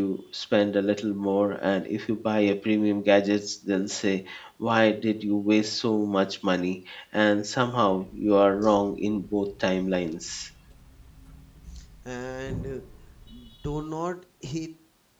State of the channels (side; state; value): both; identical; correlation 1.00